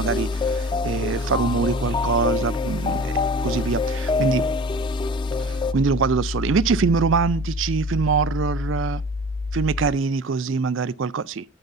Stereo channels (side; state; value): both; normal; correlation 0.41